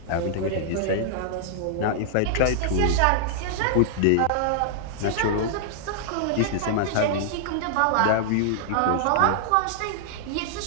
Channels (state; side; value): different; both; correlation -0.01